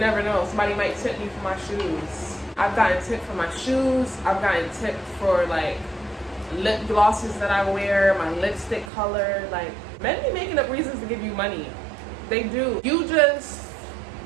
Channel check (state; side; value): drops out; left; at 8.9 s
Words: know, somebody might tip me for my shoes. I've gotten tipped for my shoes. I've gotten tipped for like lip glosses that I wear, my lipstick color. Like, men be making up reasons to give you money. They do. You just